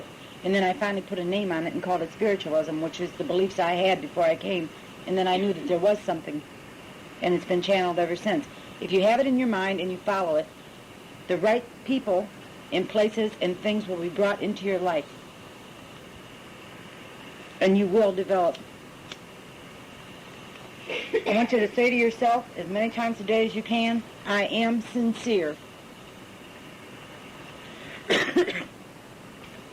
And then I finally put a name on it and called it spiritualism, which is the beliefs I had before I came. And then I knew that there was something. And it's been channeled ever since. If you have it in your mind and you follow it, the right people and places and things will be brought into your life. And you will develop. I want you to say to yourself as many times a day as you can, I am sincere.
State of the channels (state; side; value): identical; both; correlation 1.00